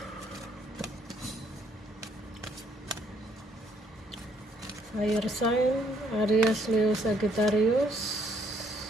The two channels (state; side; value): normal; both; correlation 0.67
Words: Fire sign Aries, Leo, Sagittarius.